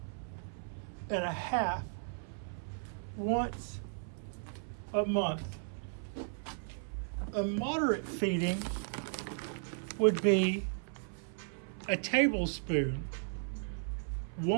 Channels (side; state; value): left; silent; 54 dB below the other